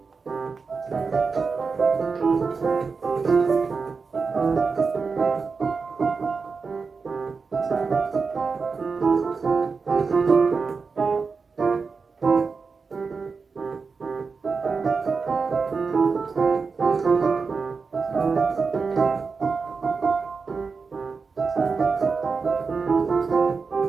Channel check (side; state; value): left; quieter; 4.8 dB